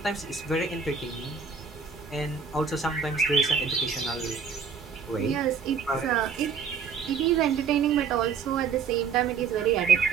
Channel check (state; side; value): quieter; left; 5.9 dB